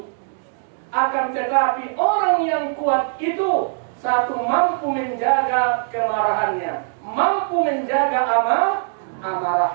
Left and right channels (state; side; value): silent; left; digital silence